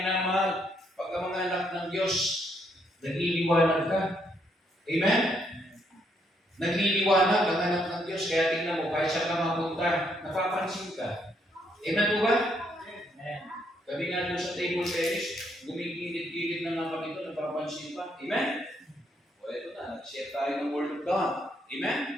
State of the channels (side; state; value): both; normal; correlation 0.73